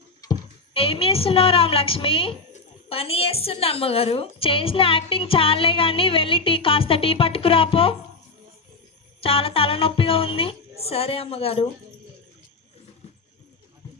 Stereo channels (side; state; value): right; quieter; 3.8 dB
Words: ఏం చేస్తున్నావు రామలక్ష్మి? పని చేస్తున్నా అమ్మగారు. చేసిన యాక్టింగ్ చాలే కానీ వెళ్ళి కాస్త టీ పట్టుకురాపో, చాలా తలనొప్పిగా ఉంది. సరే అమ్మగారు.